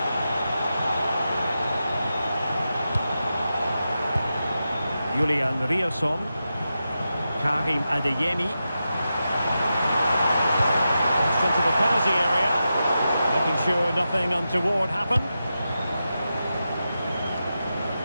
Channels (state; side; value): inverted; both; correlation -0.90